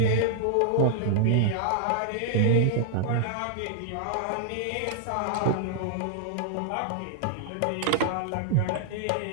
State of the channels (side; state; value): both; different; correlation -0.01